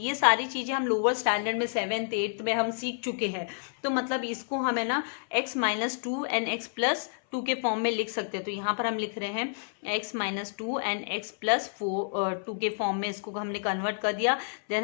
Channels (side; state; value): right; silent; 58 dB below the other